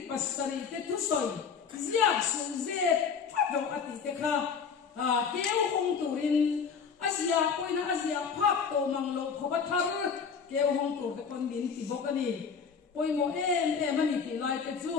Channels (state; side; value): quieter; right; 6.2 dB